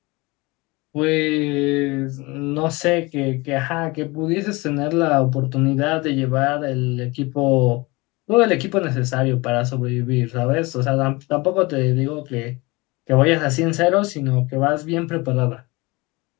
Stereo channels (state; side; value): quieter; right; 24.1 dB